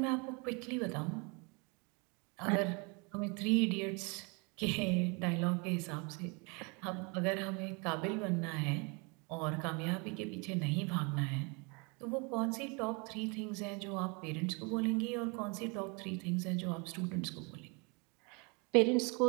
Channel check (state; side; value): quieter; left; 31.4 dB